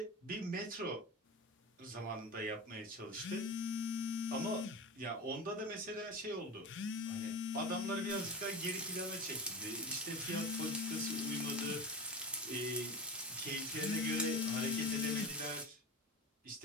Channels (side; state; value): both; normal; correlation 0.27